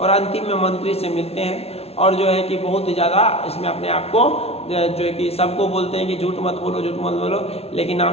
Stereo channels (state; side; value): late; right; 0.30 ms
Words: और अंतिम में मंत्री से मिलते हैं और जो है कि बहुत ही ज़्यादा इसमें अपने आप को जो है कि सबको बोलते हैं कि झूठ मत बोलो, झूठ मत बोलो, लेकिन